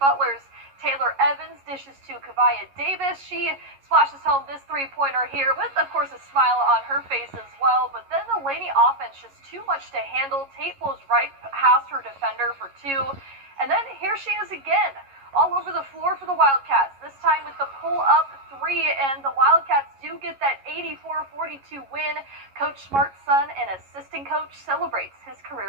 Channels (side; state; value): left; late; 11 ms